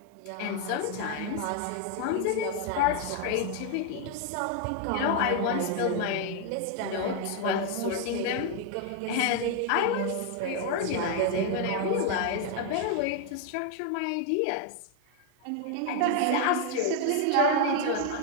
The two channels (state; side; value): different; both; correlation 0.01